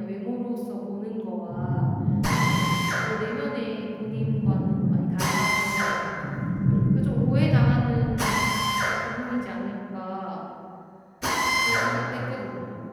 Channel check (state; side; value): identical; both; correlation 1.00